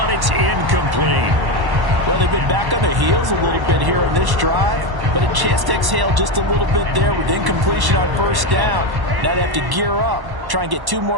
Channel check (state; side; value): late; left; 1.1 ms